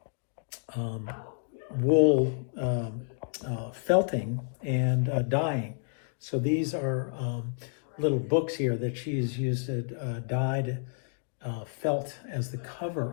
wool felting and dyeing. So these are little books here that she's used dyed felt as the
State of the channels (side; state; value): right; silent; 58 dB below the other